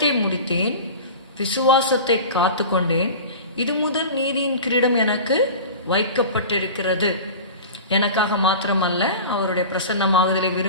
முடித்தேன், விசுவாசத்தை காத்து கொண்டேன், இது முதல் நீதியின் கிரீடம் எனக்கு வைக்கப்பட்டிருக்கிறது. எனக்காக மாத்திரமல்ல, அவருடைய பிரசன்னமாகுதலை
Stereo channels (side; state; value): both; inverted; correlation -0.34